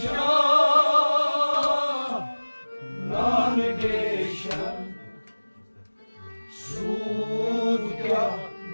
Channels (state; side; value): inverted; both; correlation -1.00